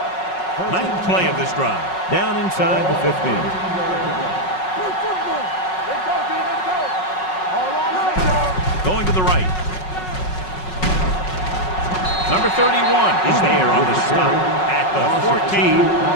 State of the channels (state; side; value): late; right; 5.4 ms